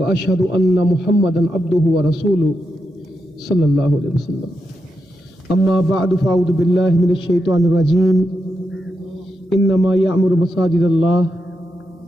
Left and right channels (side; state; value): both; normal; correlation 0.85